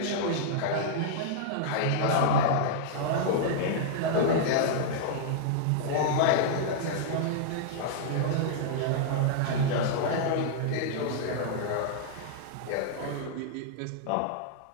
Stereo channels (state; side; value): different; both; correlation -0.01